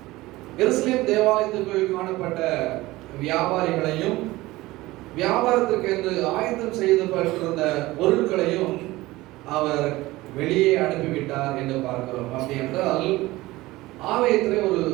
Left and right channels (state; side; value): quieter; left; 19.0 dB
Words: எருசலேம் தேவாலயத்துக்குள் காணப்பட்ட வியாபாரிகளையும் வியாபாரத்திற்கு என்று ஆயத்தம் செய்யப்பட்டிருந்த பொருட்களையும் அவர் வெளியே அனுப்பிவிட்டார் என்று பார்க்கிறோம். அப்படி என்றால் ஆலயத்திலே ஒரு